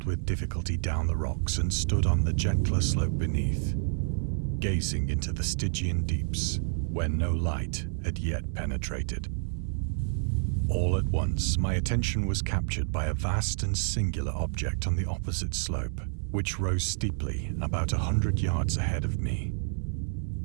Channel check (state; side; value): silent; left; 59 dB below the other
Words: with difficulty down the rocks and stood on the gentler slope beneath, gazing into the Stygian deeps, where no light had yet penetrated. All at once, my attention was captured by a vast and singular object on the opposite slope, which rose steeply about 100 yards ahead of me.